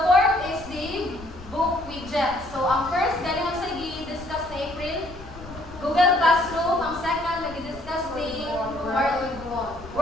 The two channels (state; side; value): noise; left; rumble, 16 dB below the sound